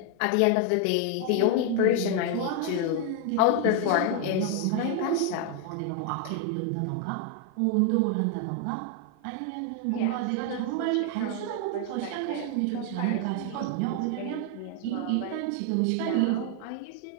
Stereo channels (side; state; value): both; different; correlation 0.00